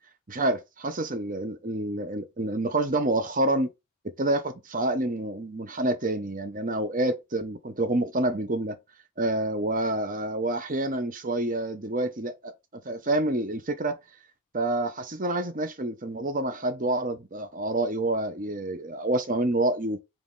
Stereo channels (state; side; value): normal; both; correlation 0.09